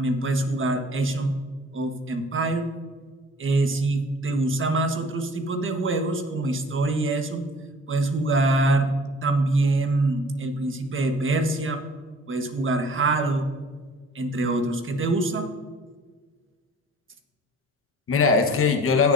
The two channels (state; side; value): normal; both; correlation 0.50